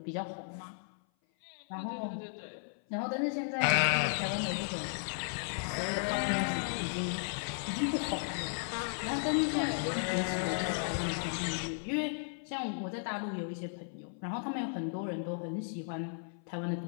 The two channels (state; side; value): silent; right; 54 dB below the other